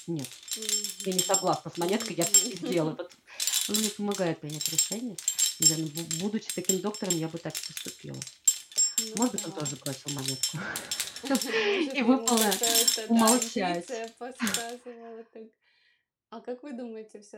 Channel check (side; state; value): both; identical; correlation 1.00